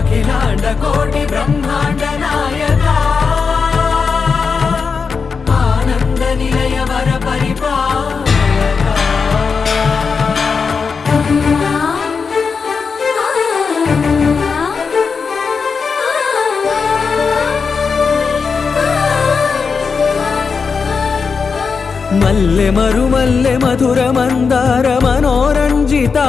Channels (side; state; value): right; quieter; 5.3 dB